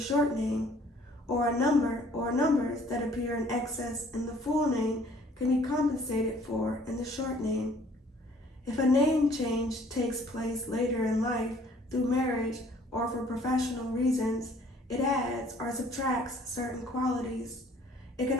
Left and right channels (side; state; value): both; normal; correlation 0.57